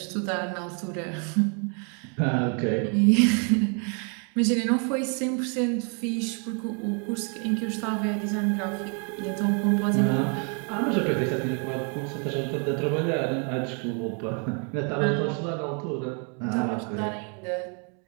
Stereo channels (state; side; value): quieter; left; 39.2 dB